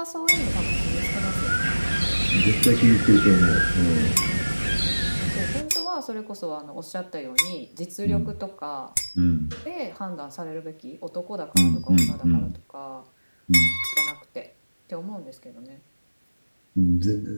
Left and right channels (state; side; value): inverted; both; correlation -1.00